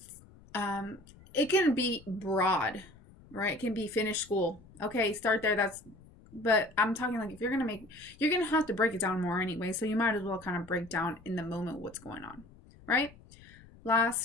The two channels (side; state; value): left; noise; rumble, 23 dB below the sound